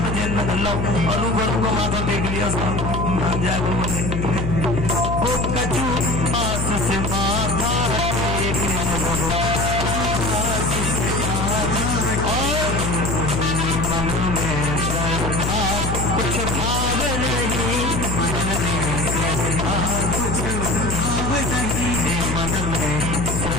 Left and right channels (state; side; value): noise; left; hum, 1 dB below the sound